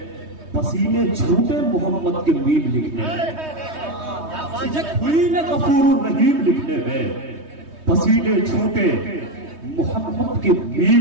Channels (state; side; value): late; left; 3.2 ms